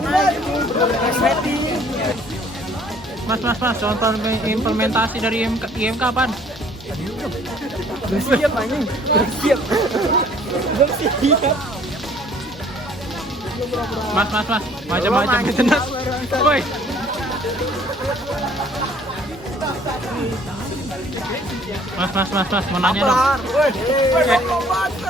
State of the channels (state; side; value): normal; both; correlation 0.57